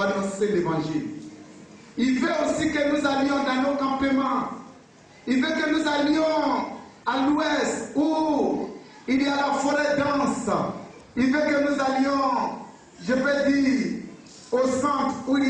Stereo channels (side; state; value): both; identical; correlation 1.00